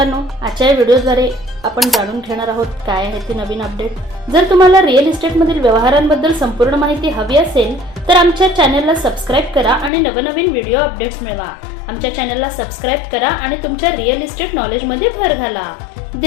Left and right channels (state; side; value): drops out; right; at 9.9 s